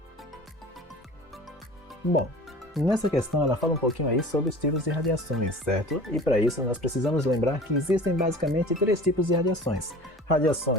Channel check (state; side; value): normal; both; correlation 0.41